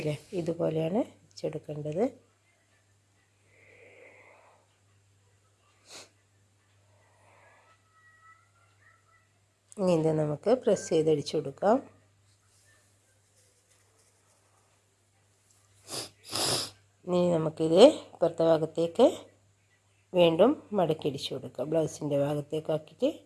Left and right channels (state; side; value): identical; both; correlation 1.00